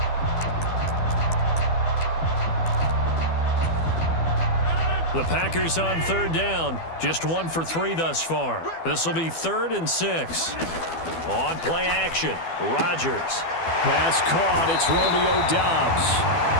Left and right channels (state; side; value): late; right; 12 ms